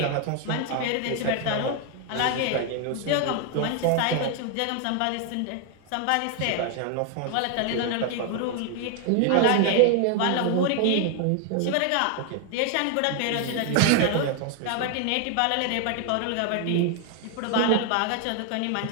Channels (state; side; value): different; both; correlation 0.00